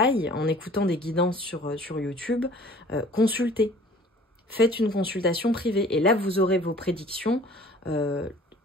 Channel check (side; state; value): both; normal; correlation 0.50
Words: en écoutant des guidances sur YouTube, consultez. Faites une consultation privée. Et là, vous aurez vos prédictions